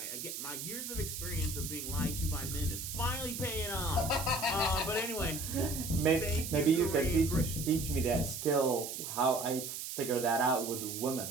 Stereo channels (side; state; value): right; noise; hiss, 6 dB below the sound